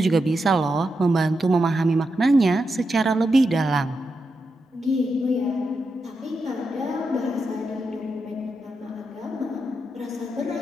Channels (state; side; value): normal; both; correlation 0.86